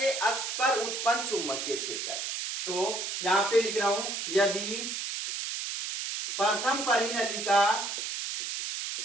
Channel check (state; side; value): noise; right; hiss, 4 dB below the sound